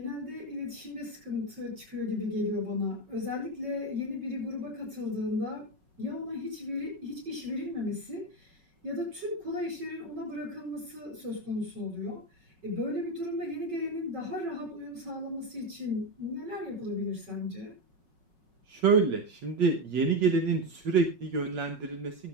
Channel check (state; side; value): late; left; 5.4 ms